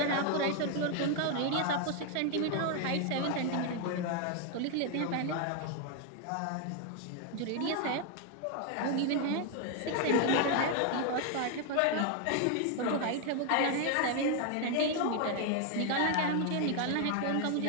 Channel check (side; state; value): both; different; correlation 0.00